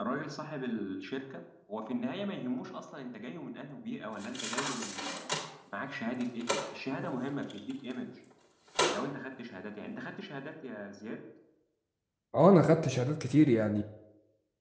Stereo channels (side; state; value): both; identical; correlation 1.00